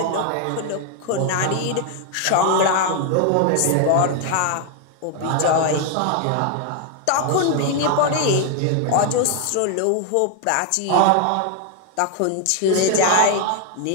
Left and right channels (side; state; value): both; different; correlation 0.00